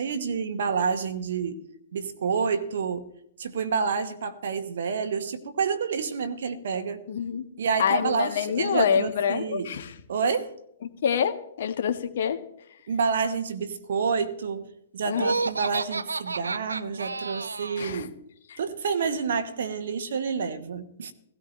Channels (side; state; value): both; inverted; correlation -0.65